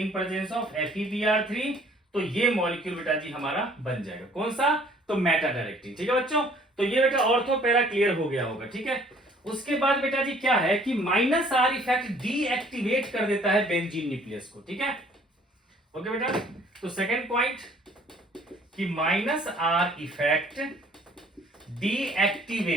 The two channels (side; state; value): both; normal; correlation 0.57